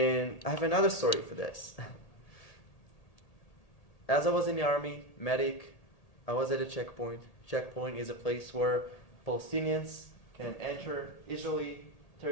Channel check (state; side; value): late; right; 1.8 ms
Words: I have another story for this. As I was in the army, medic, I was at a checkpoint. Checkpoint is a place where Palestinians can enter Israeli